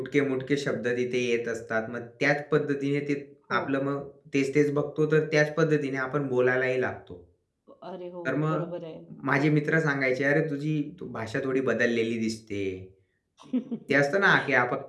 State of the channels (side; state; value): both; identical; correlation 1.00